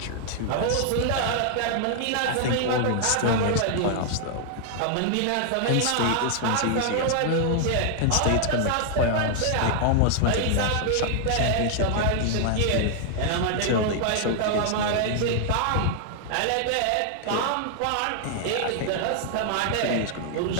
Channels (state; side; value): different; both; correlation 0.00